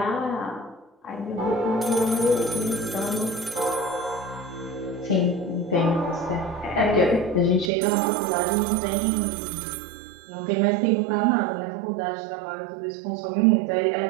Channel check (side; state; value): left; drops out; at 7.7 s